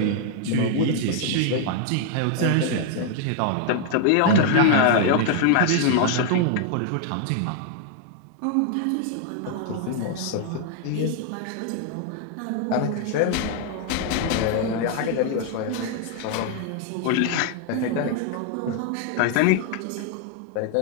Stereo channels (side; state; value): both; different; correlation 0.00